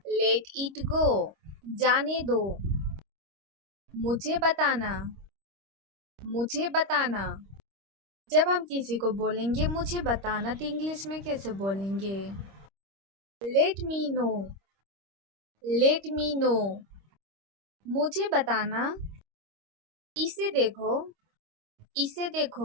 let it go. जाने दो। मुझे बताना, मुझे बताना। जब हम किसी को बोलेंगे मुझे बताना तो इंग्लिश में कैसे बोलेंगे? Let me know, let me know. मुझे बताना। इसे देखो, इसे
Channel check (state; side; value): late; left; 26 ms